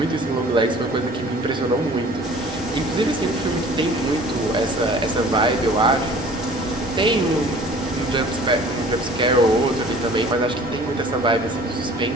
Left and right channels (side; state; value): both; normal; correlation 0.48